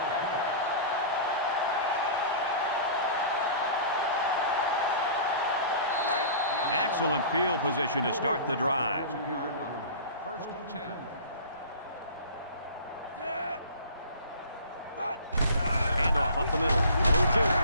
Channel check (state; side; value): inverted; both; correlation -0.41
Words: kick. Excellent field position to start the drive. 2-yard line. First and 10. Handoff up the middle. Little